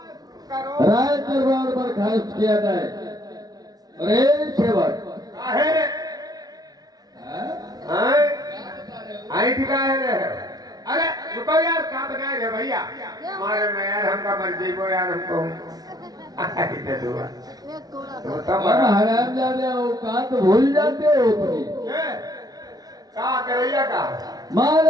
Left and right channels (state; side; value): late; left; 0.19 ms